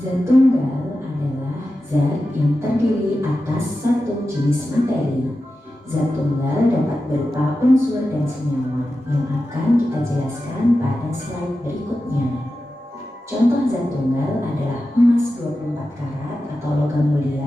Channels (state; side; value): normal; both; correlation 0.92